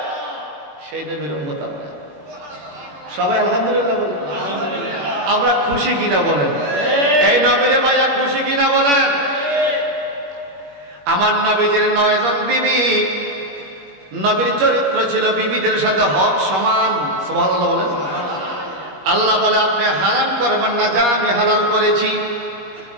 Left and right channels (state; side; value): late; left; 21 ms